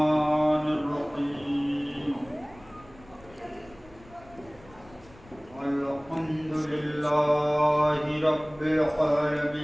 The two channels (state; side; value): noise; left; rumble, 24 dB below the sound